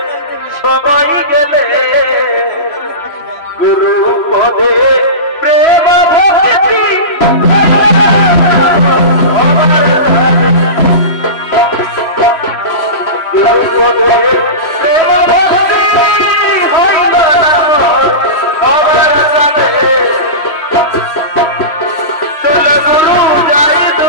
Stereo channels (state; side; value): late; right; 3.0 ms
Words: সবাই গেলে গুরু পদে প্রেম ভক্তি গুরু পদে প্রেম ভক্তি হইল না সবার সাথে। চল গুরু যাই